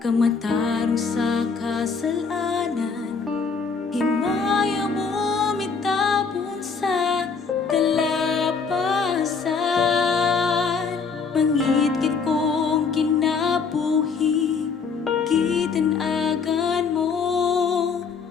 kamatarong sa kasalanan. Himaya mo mitapon sa kalapasan. Mangit-ngit kong kinabuhi, gitanagan mo.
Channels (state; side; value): quieter; right; 5.3 dB